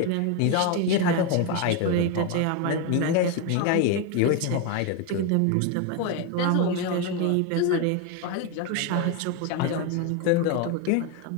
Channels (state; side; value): different; both; correlation 0.02